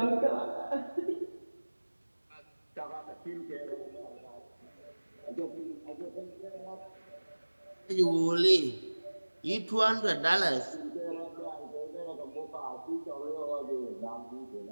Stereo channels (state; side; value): inverted; both; correlation -1.00